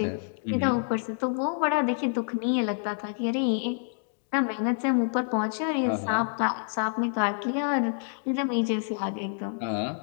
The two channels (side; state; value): right; silent; 59 dB below the other